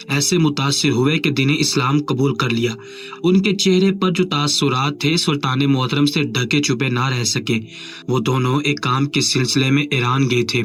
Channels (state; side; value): identical; both; correlation 1.00